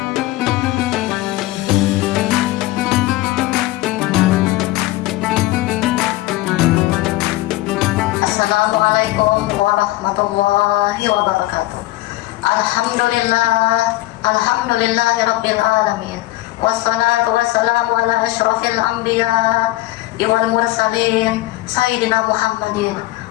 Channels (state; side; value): quieter; right; 17.8 dB